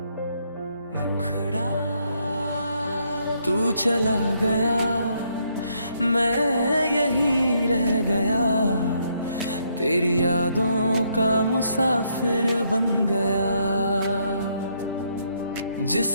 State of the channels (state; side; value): inverted; both; correlation -0.73